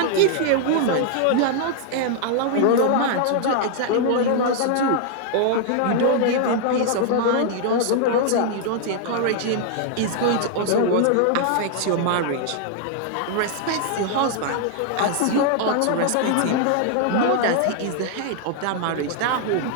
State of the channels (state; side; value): different; both; correlation 0.00